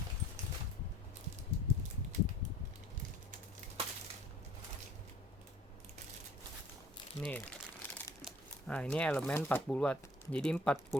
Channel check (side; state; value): both; normal; correlation 0.53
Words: nih. Nah, ini elemen 40 watt. Jadi 40